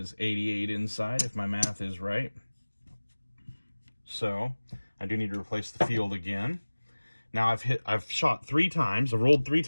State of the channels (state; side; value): inverted; both; correlation -1.00